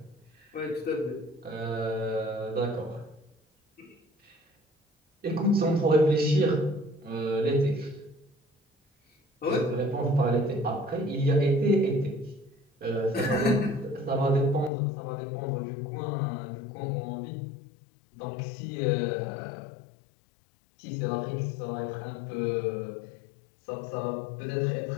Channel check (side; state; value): right; drops out; at 14.7 s